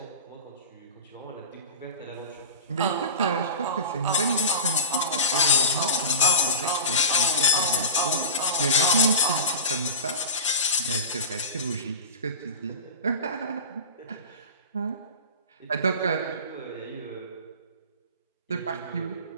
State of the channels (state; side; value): inverted; both; correlation -0.30